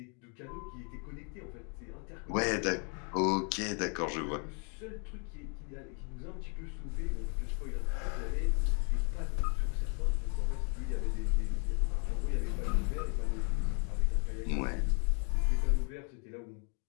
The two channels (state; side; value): quieter; right; 38.6 dB